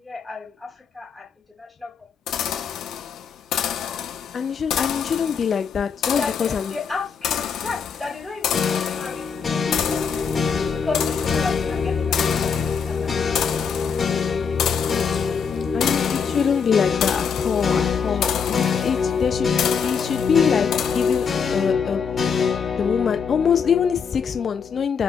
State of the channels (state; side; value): quieter; right; 6.4 dB